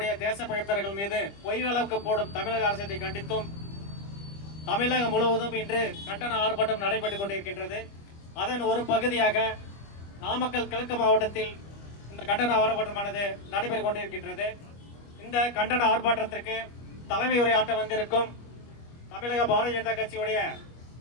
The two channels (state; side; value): late; right; 25 ms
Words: தேசப்பழித்தர்கள் மீது பொய் வழக்கு போடும் தமிழக அரசை கண்டித்தும் தமிழகம் முழுவதும் இன்று கண்டன ஆர்ப்பாட்டம் நடைபெற்றுக் கொண்டிருக்கின்றது. அதன் ஒரு பகுதியாக நாமக்கல் கிழக்கு மாவட்டத்தில் இந்த கண்டன ஆர்ப்பாட்டமானது நடைபெற்றுக் கொண்டிருக்கின்றது. இந்த கண்டன ஆர்ப்பாட்டத்திற்கு தலைமை உரையாற்ற வந்திருக்கும் தமிழக பாரதிய ஜனதா கட்சியுடைய